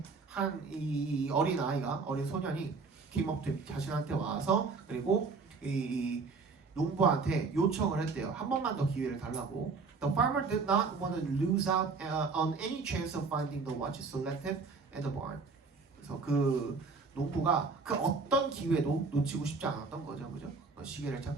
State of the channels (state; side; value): quieter; left; 4.5 dB